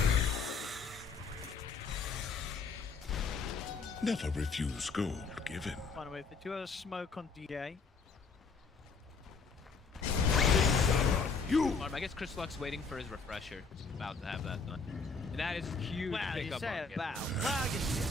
Never refuse gold given. By the way, if they do have a smoke on DA. I guess Chris Luck's waiting for his refresher. He's about to have that done. And that is huge Wow, you pickup say on him. about. Well,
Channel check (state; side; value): quieter; right; 4.6 dB